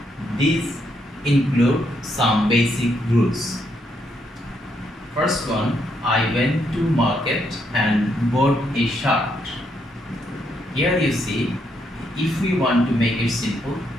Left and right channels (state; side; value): normal; both; correlation 0.76